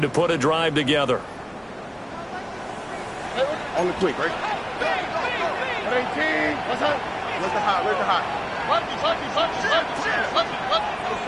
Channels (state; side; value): identical; both; correlation 1.00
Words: to put a drive together. On the quick, right? 18. What's up? Where's the hot? Where's the hot?